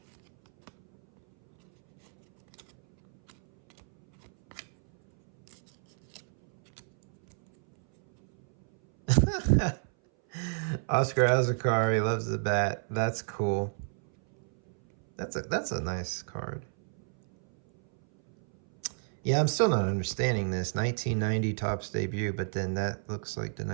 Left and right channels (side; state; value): left; silent; 57 dB below the other